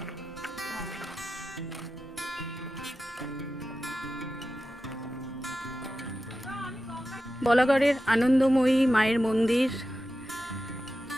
বলাগড়ের আনন্দময়ী মায়ের মন্দির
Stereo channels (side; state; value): both; normal; correlation 0.92